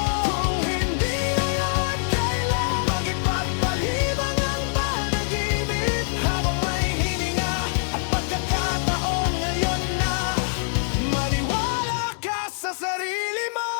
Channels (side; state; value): right; silent; digital silence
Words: Kung hindi ngayon, kailan? Mag-ipagpalibang ang panaginip habang may hininga at pagkakataon, ngayon na. Maniwala ka sa sarili mo,